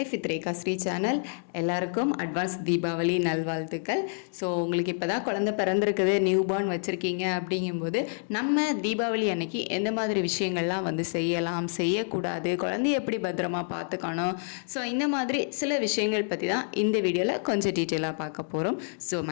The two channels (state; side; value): silent; right; digital silence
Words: with Rekha Sri channel. எல்லாருக்கும் advance Deepavali நல்வாழ்த்துக்கள். So உங்களுக்கு இப்போ தான் குழந்தை பிறந்திருக்குது, நியூ பார்ன் வச்சுருக்கீங்க அப்படிங்கும்போது நம்ம தீபாவளி அன்னைக்கு எந்த மாதிரி விஷயங்கள்லாம் செய்யலாம், செய்யக்கூடாது, குழந்தைய எப்படி பத்திரமா பார்த்துக்கணும், ஸோ இந்த மாதிரி சில விஷயங்கள் பற்றி தான் இந்த வீடியோவில் கொஞ்சம் டீட்டெயிலாக பார்க்க போகிறோம். ஸோ